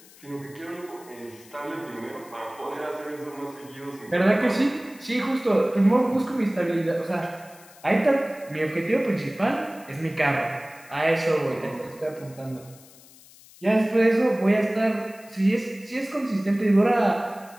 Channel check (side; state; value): left; noise; hiss, 23 dB below the sound